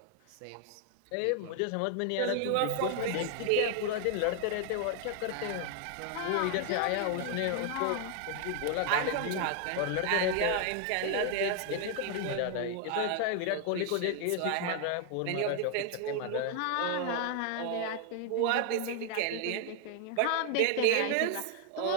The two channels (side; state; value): both; different; correlation 0.00